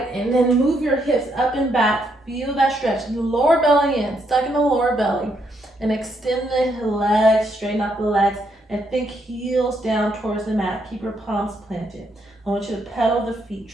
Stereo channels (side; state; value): both; normal; correlation 0.76